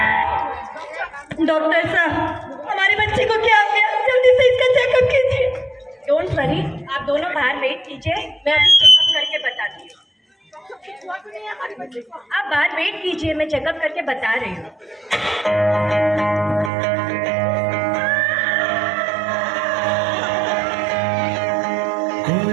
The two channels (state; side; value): drops out; left; at 16.7 s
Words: डॉक्टर साहब, हमारी बच्ची को क्या हो गया? जल्दी से इसका चेकअप कीजिए। डोंट वरी, आप दोनों बाहर वेट कीजिए, मैं अभी चेकअप करके बताती हूँ। आप बाहर वेट कीजिए, मैं चेकअप करके बता रही हूँ।